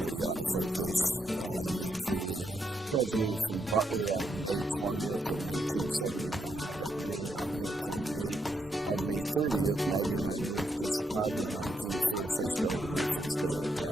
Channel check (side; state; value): both; normal; correlation 0.79